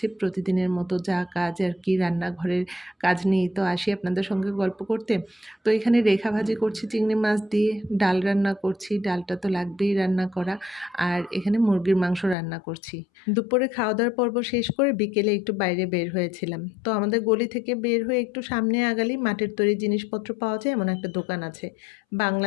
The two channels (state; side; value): drops out; right; at 12.4 s